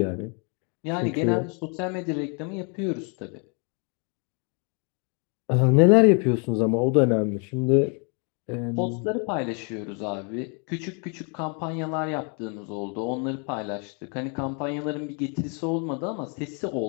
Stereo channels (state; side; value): quieter; right; 37.6 dB